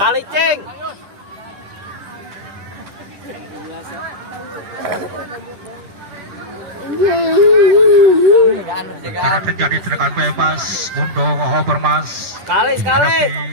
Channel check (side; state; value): left; late; 10 ms